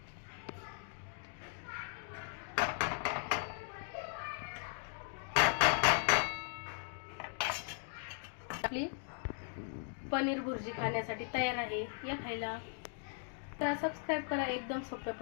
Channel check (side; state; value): right; silent; 52 dB below the other